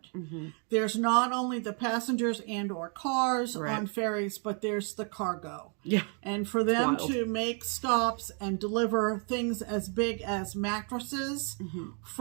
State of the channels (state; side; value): quieter; left; 39.9 dB